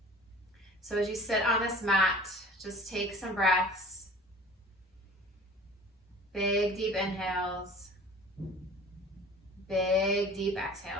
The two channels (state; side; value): normal; both; correlation 0.45